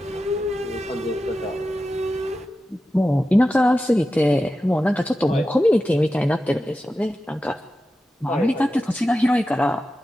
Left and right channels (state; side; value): normal; both; correlation 0.92